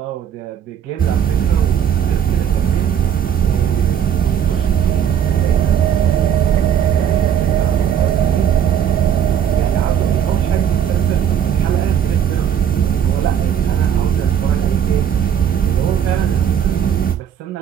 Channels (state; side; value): quieter; left; 8.9 dB